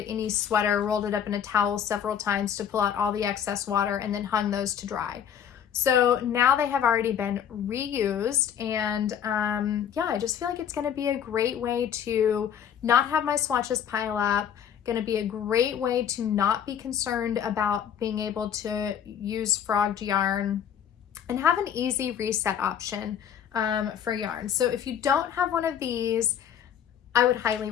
any sweater, rolled it up in a towel several times to pull out all the excess water, and then hung those to dry. So now they have already been reused, and I just feel like it's going to be a great way to not have my swatches pile up, going to be a great way to not be concerned about being able to use frogged yarn, and have an easy reset option for yarn. So if you don't have one of these, I would highly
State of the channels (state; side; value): quieter; right; 8.8 dB